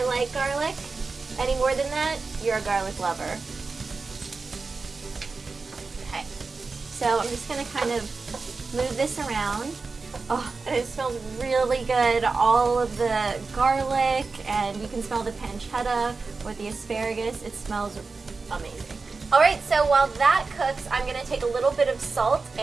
like garlic. Any more than that, you're a garlic lover. Okay, so I'm just gonna kind of move this around. Oh, and it smells really good. All of the garlic, and you can smell the pancetta with the asparagus. It smells amazing. All right, so while that cooks, I'm gonna take a little bit of salt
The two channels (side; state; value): left; quieter; 4.2 dB